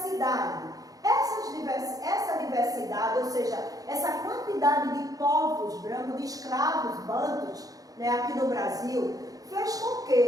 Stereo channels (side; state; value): left; late; 0.17 ms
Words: Essa diversidade, ou seja, essa quantidade de povos brancos, de escravos bantus, né, aqui no Brasil, fez com